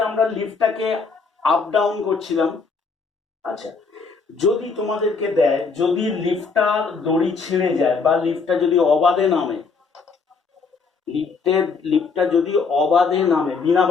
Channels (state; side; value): quieter; right; 4.8 dB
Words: আমরা লিফটটাকে আপ ডাউন করছিলাম। আচ্ছা, যদি তোমাদেরকে দেয়, যদি লিফটটার দড়ি ছিঁড়ে যায় বা লিফটটা যদি অবাধে নামে, লিফটটা যদি অবাধে নামে, বিনা